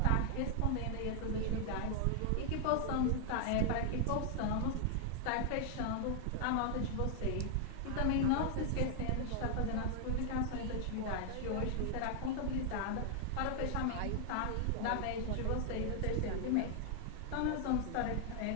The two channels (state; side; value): different; both; correlation 0.00